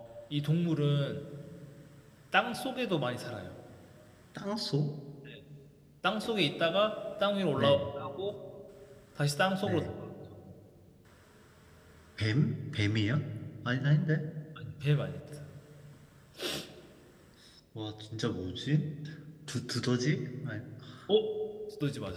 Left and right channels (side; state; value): both; identical; correlation 1.00